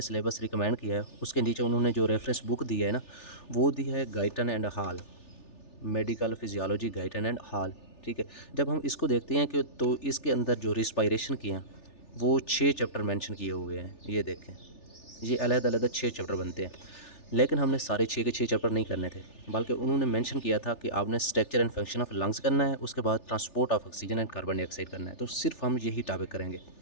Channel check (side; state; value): right; late; 3.4 ms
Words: रिकमेंड किया है उसके नीचे उन्होंने जो रेफरेंस बुक दी है ना, वो दी है Guyton and hall, medical physiology Guyton and hall. ठीक है, जब हम इसको देखते हैं कि तो इसके अंदर जो रिस्पायरेशन की हैं वो 6 चैप्टर मेंशन किए हुए हैं। ये देखें, ये अलग-अलग 6 चैप्टर बनते हैं, लेकिन हमने सारे 6 के 6 चैप्टर नहीं करने थे, बल्कि उन्होंने मेंशन किया था कि आपने structure and function of lungs करना है, उसके बाद transport of oxygen and carbon dioxide करना है। तो सिर्फ हम यही टॉपिक करेंगे।